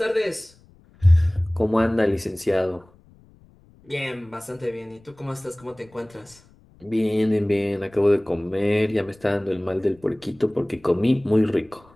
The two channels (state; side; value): noise; left; rumble, 28 dB below the sound